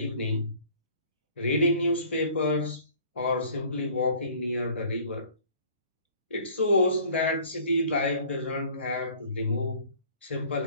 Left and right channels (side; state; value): both; inverted; correlation -0.52